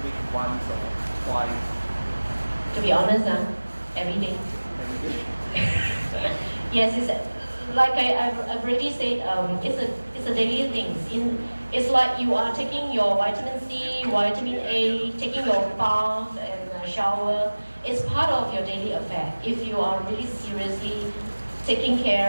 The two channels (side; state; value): both; inverted; correlation -1.00